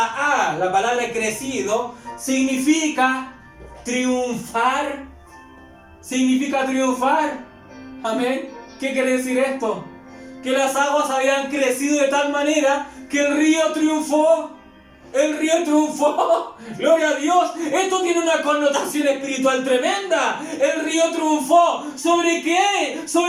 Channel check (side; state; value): both; identical; correlation 1.00